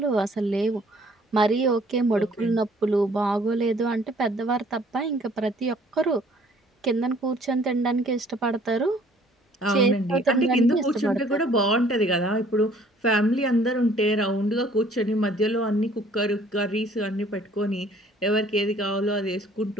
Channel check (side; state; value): both; normal; correlation 0.58